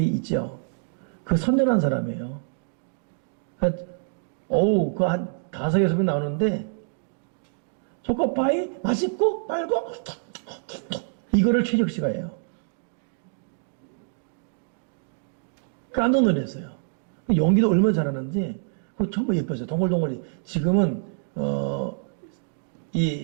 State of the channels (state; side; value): silent; left; digital silence